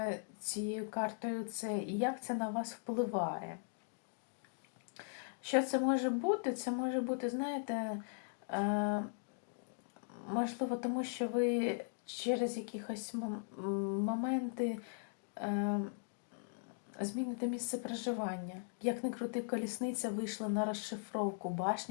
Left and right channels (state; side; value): silent; right; digital silence